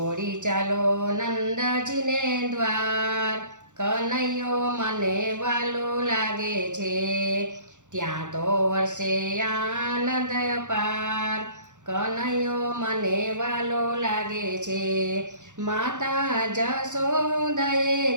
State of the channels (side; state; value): left; late; 0.85 ms